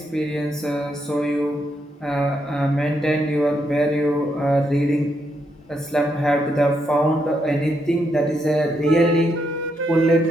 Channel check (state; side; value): normal; both; correlation 0.79